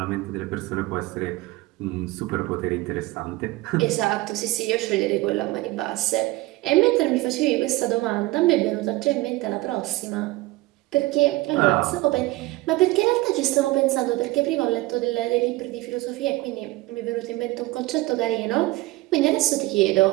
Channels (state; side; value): quieter; left; 19.6 dB